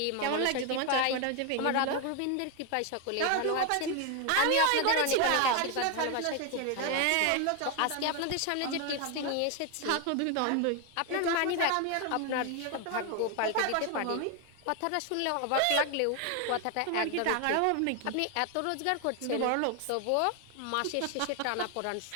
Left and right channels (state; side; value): different; both; correlation 0.01